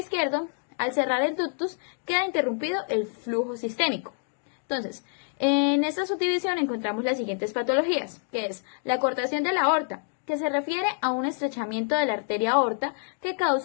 al cerrar el ductus queda interrumpido el flujo sistémico. Entonces, en esta subdivisión encontramos las siguientes patologías, que es la cortación de la aorta, que se refiere a un estrechamiento de la arteria aorta que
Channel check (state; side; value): silent; right; 57 dB below the other